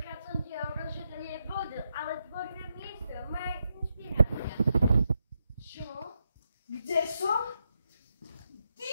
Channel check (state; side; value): inverted; both; correlation -0.83